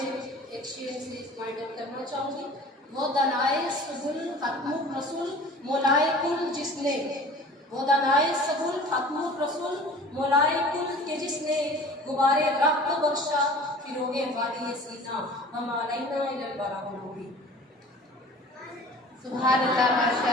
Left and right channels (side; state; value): both; normal; correlation 0.44